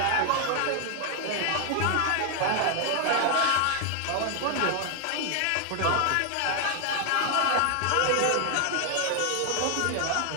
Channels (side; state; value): both; different; correlation 0.00